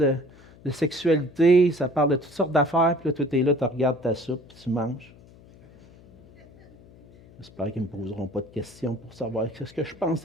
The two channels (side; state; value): left; noise; hum, 24 dB below the sound